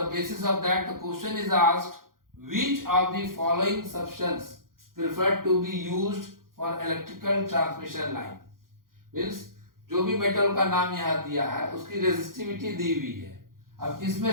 basis of that the question is asked, which of the following substance preferred to be used for electrical transmission line? Means जो भी metal का नाम यहाँ दिया है उसकी resistivity दी हुई है. अब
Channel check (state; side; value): late; left; 0.91 ms